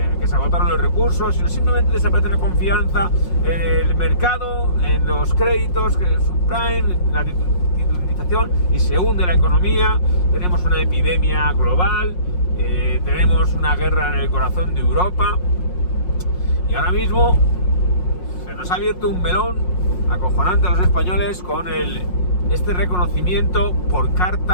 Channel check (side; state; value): right; late; 5.5 ms